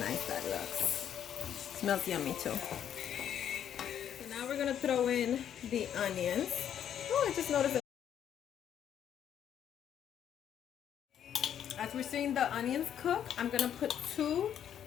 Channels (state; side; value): quieter; right; 9.5 dB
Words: nice that looks. Smells yummy too. So now we're gonna throw in the onions. Oh, I just noticed that. As we're seeing the onions cook, I'm gonna put 2